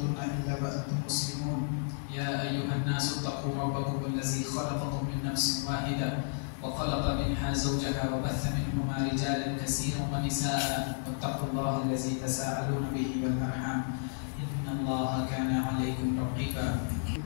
إلا وأنتم مسلمون. يا أيها الناس اتقوا ربكم الذي خلقكم من نفس واحدة وخلق منها زوجها وبث منهما رجالا كثيرا ونساء واتقوا الله الذي تساءلون به والأرحام إن الله كان عليكم رقيبا.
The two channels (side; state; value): right; silent; 56 dB below the other